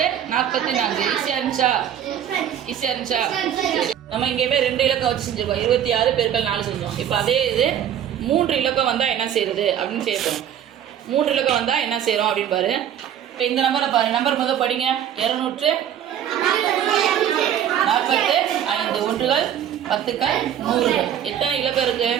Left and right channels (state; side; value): quieter; left; 9.9 dB